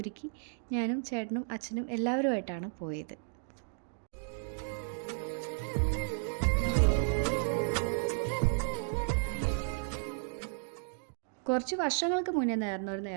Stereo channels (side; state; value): left; silent; digital silence